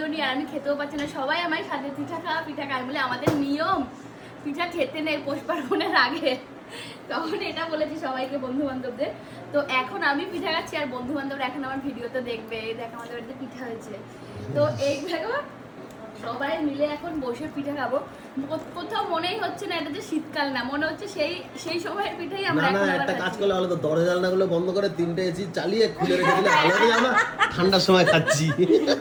নি, আর আমি খেতেও পারছি না, সবাই আমার সাথে পিঠা খাওয়া বলে আমাদের নিয়ম পিঠা খেতে নেই পৌষ পার্বণের আগে। তখন এটা বলেছি সবাইকে, বন্ধু বান্ধবদের। তো এখন আমি পিঠা খাচ্ছি আর বন্ধু বান্ধবরা এখন আমার ভিডিওতে দেখবে, দেখ আমাদের বাড়িতে পিঠা হয়েছে। তো এইভাবে সবাই মিলে এখন বসে পিঠা খাবো। কোথাও মনেই হচ্ছে না এটা যে শীতকাল না, মনে হচ্ছে সেই সময়ের পিঠাই আমরা না একটা কাজ করলে ভালো তো, দরজা জানলাগুলো বন্ধ করে 3টে এসি চালিয়ে খুলে রেখে দিলে আলাদাই আমরা ঠান্ডার সময় খাচ্ছি।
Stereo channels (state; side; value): identical; both; correlation 1.00